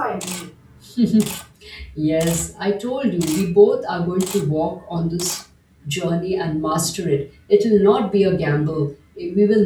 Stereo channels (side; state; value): both; identical; correlation 1.00